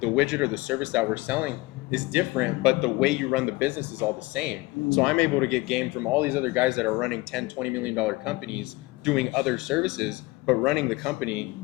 widget or the service that we're selling is different, but the way you run the business is all the same. So I'm able to get game from all these other guys that are running 10, $20 million companies doing other services, but running the company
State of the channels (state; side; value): quieter; right; 22.1 dB